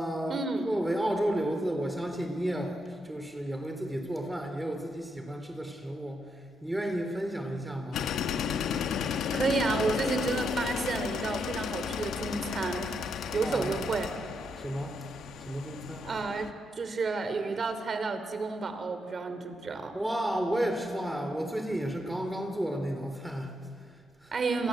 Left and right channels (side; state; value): both; normal; correlation 0.80